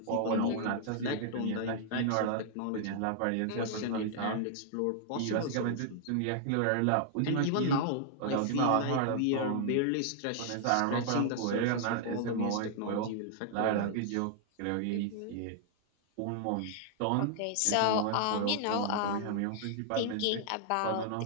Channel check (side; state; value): both; different; correlation -0.01